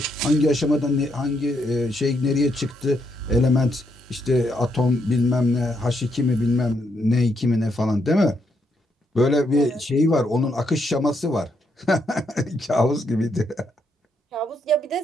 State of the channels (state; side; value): normal; both; correlation 0.77